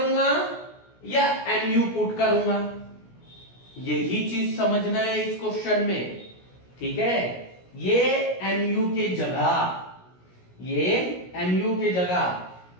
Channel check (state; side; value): late; right; 16 ms